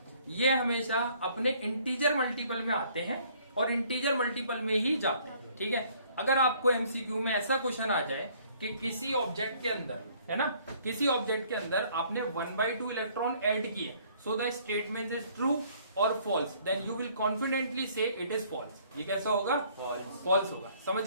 ये हमेशा अपने इंटीजर मल्टीपल में आते हैं और इंटीजर मल्टीपल में ही जाते हैं, ठीक है। अगर आपको एमसीक्यू में ऐसा क्वेश्चन आ जाए कि किसी ऑब्जेक्ट के अंदर, है ना, किसी ऑब्जेक्ट के अंदर आपने 1/2 इलेक्ट्रॉन ऐड किए, so the statement is true और false, then you will confidently say it is false. ये कैसा होगा, फॉल्स होगा।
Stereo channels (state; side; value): inverted; both; correlation -0.60